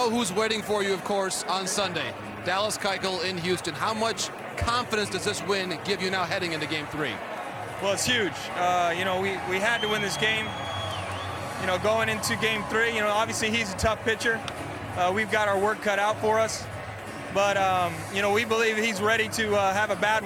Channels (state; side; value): identical; both; correlation 1.00